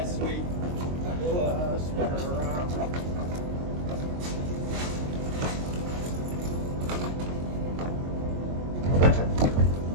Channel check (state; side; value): late; left; 22 ms